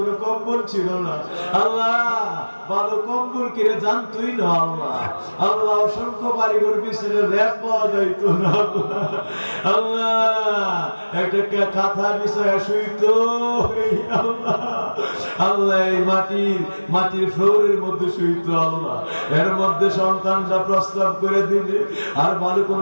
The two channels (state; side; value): inverted; both; correlation -1.00